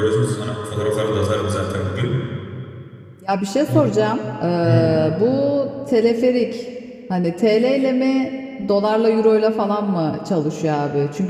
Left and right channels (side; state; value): both; identical; correlation 1.00